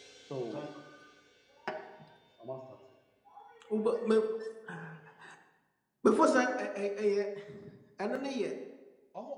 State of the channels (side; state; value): both; identical; correlation 1.00